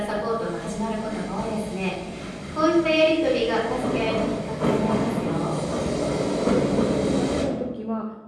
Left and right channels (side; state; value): both; identical; correlation 1.00